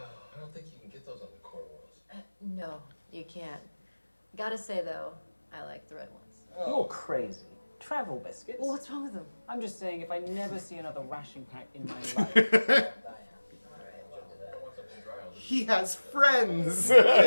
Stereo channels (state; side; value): inverted; both; correlation -1.00